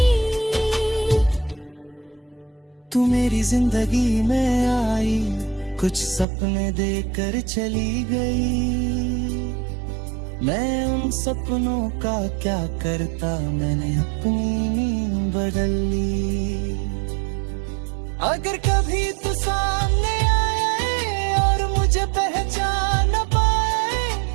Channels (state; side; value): drops out; left; at 6.2 s